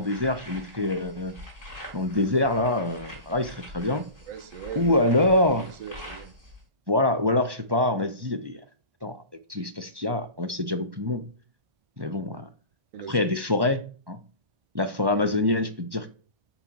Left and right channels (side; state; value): left; late; 1.1 ms